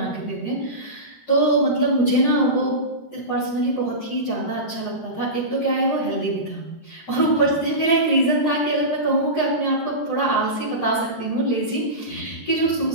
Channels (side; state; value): right; late; 13 ms